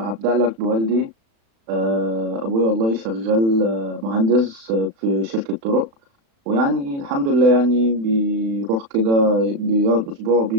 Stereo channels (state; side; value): late; left; 36 ms